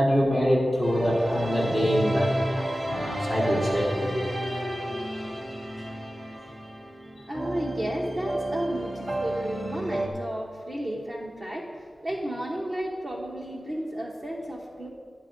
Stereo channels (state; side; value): normal; both; correlation 0.95